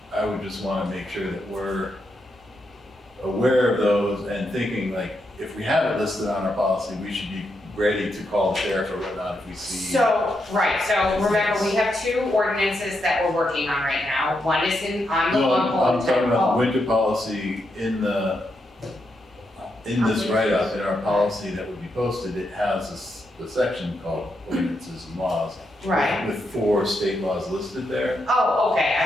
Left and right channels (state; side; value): normal; both; correlation 0.82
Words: would just want to make sure that we're aware of those and thinking like, if we have it listed on our policy, we should be ready to call the sheriff or whatnot if we see. So, right, so remember, we have 2 ordinances that we're working on right now. One is on the No, long I'm talking about the pole. winter policy in this write-up, in our policy that would be posted, it has a section called ordinances and laws. Right. With 4 state laws listed there. Oh, okay,